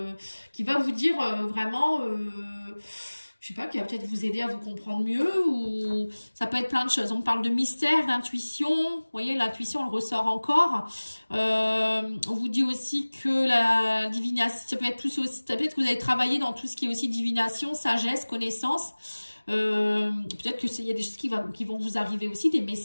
vous dire vraiment... je sais pas, qui va peut-être vous aider à vous comprendre mieux, ou ça peut être plein de choses. On parle de mystère, d'intuition, vous voyez, l'intuition, elle ressort encore. On vous dit aussi que la divination, ça peut être plus aussi, ça peut être que vous avez travaillé dans tout ce qui est aussi divination, sagesse, connaissance. Peut-être que il y a des choses qui vont vous arriver aussi, des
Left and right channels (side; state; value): both; inverted; correlation -1.00